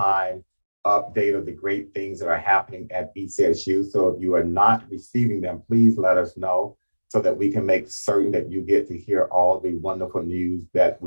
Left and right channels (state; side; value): inverted; both; correlation -1.00